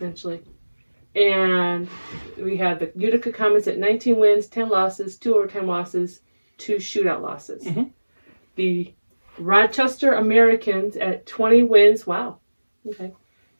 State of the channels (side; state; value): both; inverted; correlation -1.00